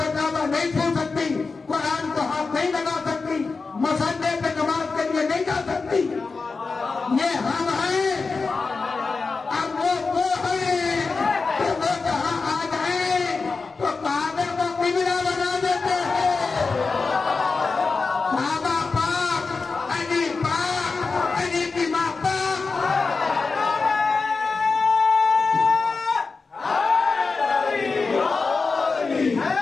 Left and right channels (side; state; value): right; quieter; 4.3 dB